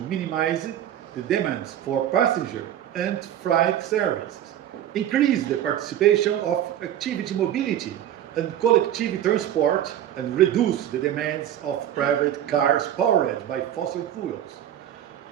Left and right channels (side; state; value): left; quieter; 11.2 dB